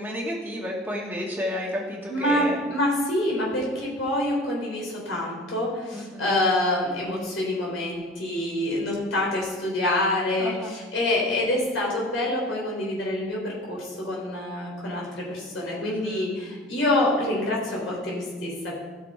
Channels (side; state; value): both; normal; correlation 0.40